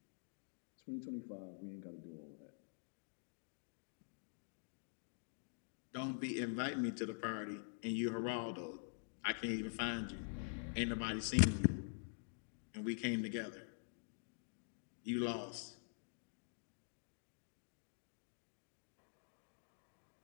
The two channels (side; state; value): right; silent; digital silence